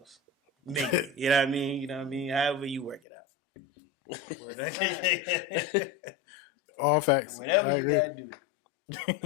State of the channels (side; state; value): right; drops out; at 3.0 s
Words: Maybe. You know what I mean? You know what I mean? However you work it out. All facts. Whatever I you agree. gotta do.